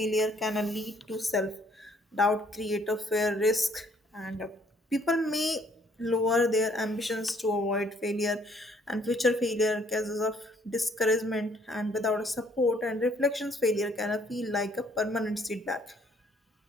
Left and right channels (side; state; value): both; normal; correlation 0.64